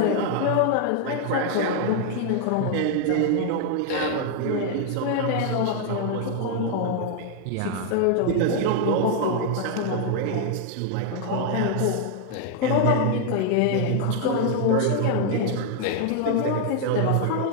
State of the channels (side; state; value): both; different; correlation 0.00